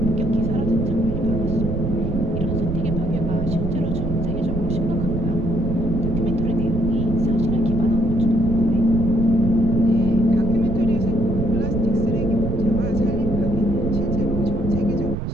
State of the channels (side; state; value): right; noise; rumble, 2 dB below the sound